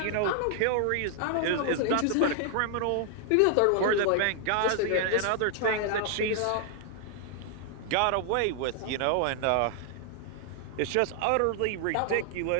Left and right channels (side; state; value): both; different; correlation 0.00